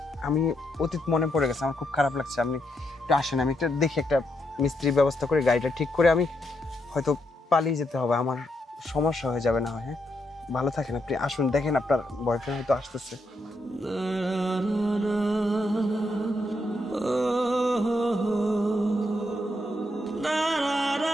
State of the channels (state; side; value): normal; both; correlation 0.80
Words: আমি অতীত মনে পড়ে গেছে, আমার খুব খারাপ লাগছে। আপনি একটু আসেন, আমি একটা দেখি একটা মিস্ত্রির ব্যবস্থা করে গাড়িটা ঠিক করে আমি হয়তো পালিয়ে যেতে হবে, আমার সমস্যা হয়ে যাবে না হয়। হ্যাঁ, ভালো থাকেন আপনি, আসুন দেখেন আপনার বয়ফ্রেন্ড হয়তো আসতেছে।